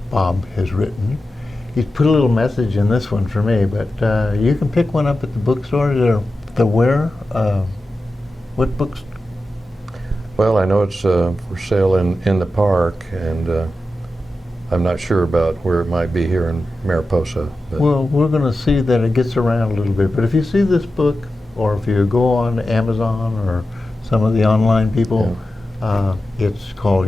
Bob has written. He's put a little message in this one for me, but you can pick one up at the bookstore. The where? What books? Well, I know it's for sale in the park, and I'm not sure about where it might be here in Mariposa. But Well, we're going to see that it gets around a little bit. But if you see this book, or if you go on Amazon or some of the online people, it's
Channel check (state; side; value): normal; both; correlation 0.92